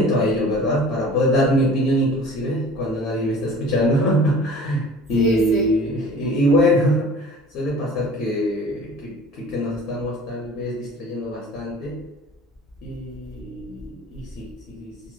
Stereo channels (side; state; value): both; normal; correlation 0.45